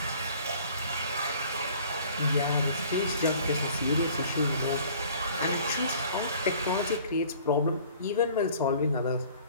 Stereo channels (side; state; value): both; inverted; correlation -0.51